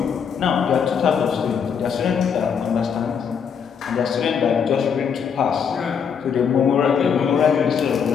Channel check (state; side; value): quieter; right; 7.0 dB